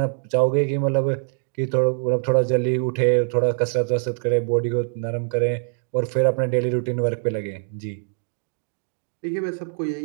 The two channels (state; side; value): silent; left; digital silence